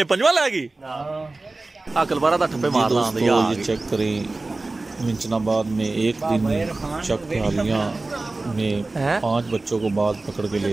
पंजवा लेगी। अकलबारा दा ठप्पे मारना आंदे यार। ये चेक करें मिंचनाबाद में एक दिन चक हालियां में 5 बच्चों को बाद पकड़ के ले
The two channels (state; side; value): quieter; left; 3.2 dB